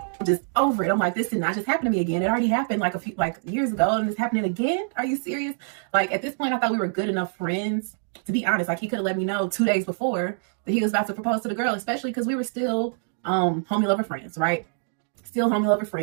I'm just over it. I'm like, this did not just happen to me again. It already happened like a few years ago, and it's happening again. Are you serious? Like at this point, I thought we were good enough friends. To be honest, like he could have let me know 2 days before that he was about to propose to the girl, especially because we were still homie lover friends, right? Still homie lover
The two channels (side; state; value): left; silent; digital silence